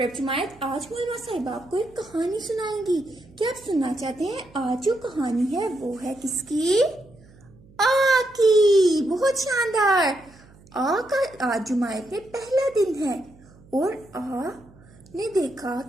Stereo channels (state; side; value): noise; right; hum, 25 dB below the sound